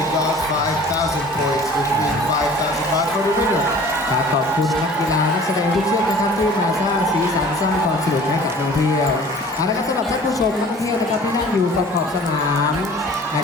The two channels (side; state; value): both; normal; correlation 0.47